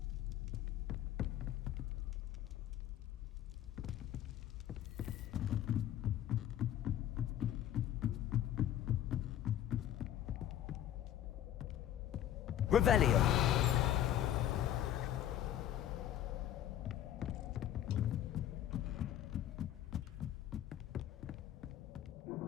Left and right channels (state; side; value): quieter; right; 11.7 dB